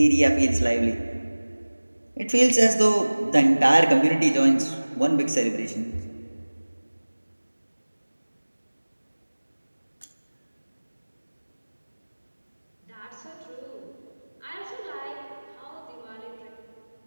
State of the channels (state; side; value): inverted; both; correlation -1.00